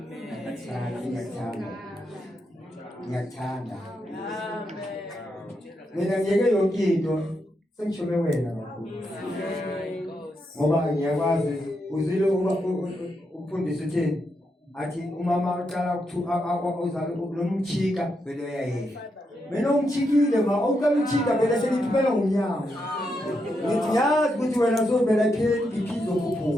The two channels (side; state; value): both; normal; correlation 0.82